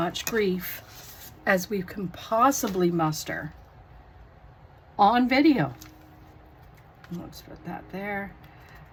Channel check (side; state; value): both; identical; correlation 1.00